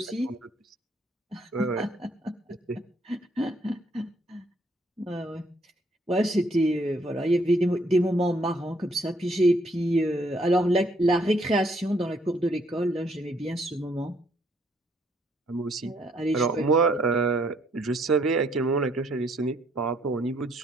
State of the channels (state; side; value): normal; both; correlation 0.68